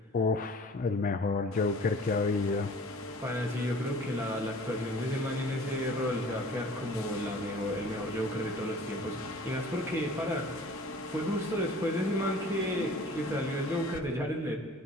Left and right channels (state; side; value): normal; both; correlation 0.47